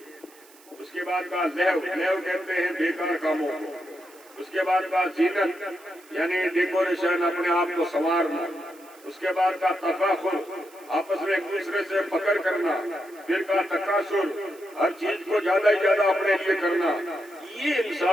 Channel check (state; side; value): noise; right; hiss, 25 dB below the sound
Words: اس کے بعد کہا لہو. لہو کہتے ہیں بیکار کاموں کو. اس کے بعد کہا زینت یعنی ڈیکوریشن، اپنے آپ کو سنوارنا. اس کے بعد کہا تفاخر، آپس میں ایک دوسرے سے فخر کرنا. پھر کہا تکاثر، ہر چیز کو زیادہ ہی زیادہ اپنے لیے کرنا. یہ